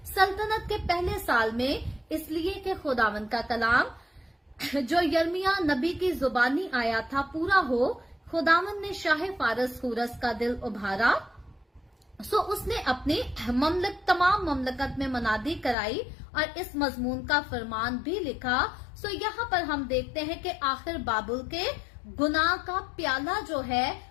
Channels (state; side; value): drops out; right; at 15.8 s